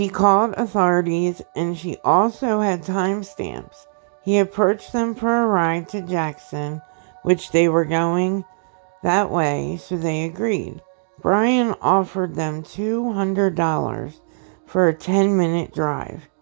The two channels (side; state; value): left; silent; digital silence